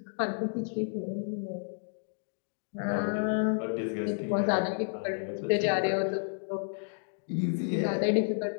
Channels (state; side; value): silent; right; digital silence